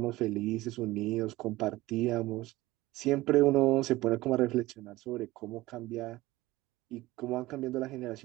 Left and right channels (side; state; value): left; quieter; 18.3 dB